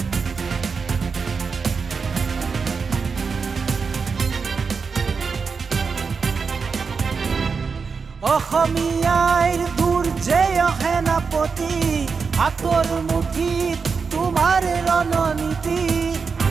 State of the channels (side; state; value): left; quieter; 5.3 dB